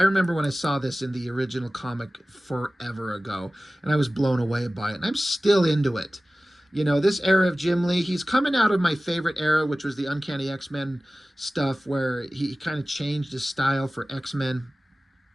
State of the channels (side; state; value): both; normal; correlation 0.97